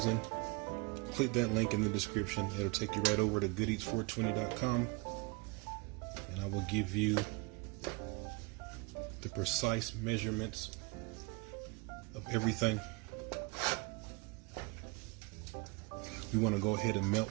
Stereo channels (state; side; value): quieter; left; 26.3 dB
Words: click that link in the description. It'll take you right over to goodeats420.com, and I will give you the precise measurements of everything. We want to go ahead and melt